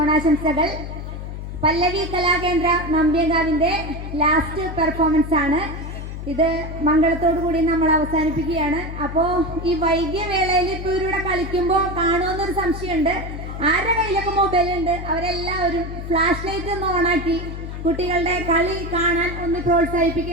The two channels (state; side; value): noise; left; hum, 8 dB below the sound